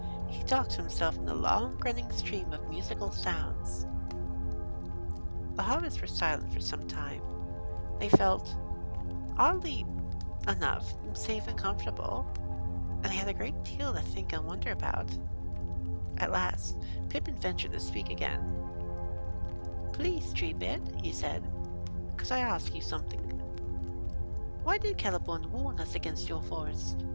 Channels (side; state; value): both; inverted; correlation -1.00